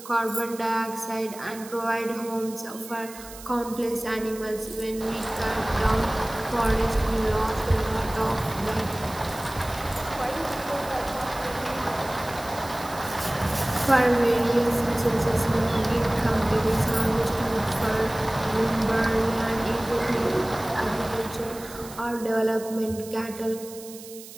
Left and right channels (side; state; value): right; noise; hiss, 16 dB below the sound